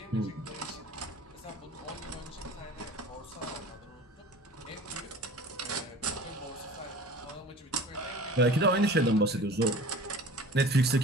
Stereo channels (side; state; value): both; normal; correlation 0.42